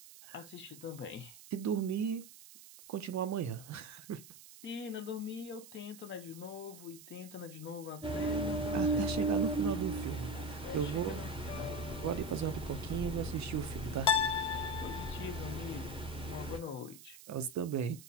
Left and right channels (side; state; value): right; noise; hiss, 18 dB below the sound